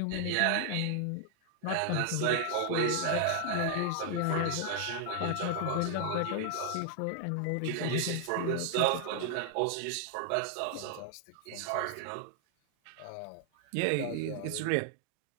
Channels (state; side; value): different; both; correlation 0.00